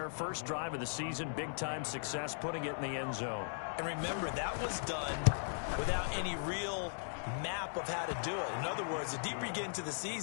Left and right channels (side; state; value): right; silent; digital silence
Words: First drive of the season, big-time success, putting it in the end zone. And remember, that was done without any real map of how to do it. In other words, the deeper you get into the